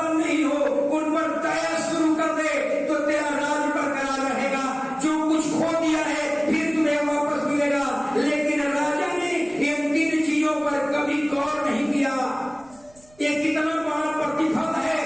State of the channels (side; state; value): right; noise; rumble, 29 dB below the sound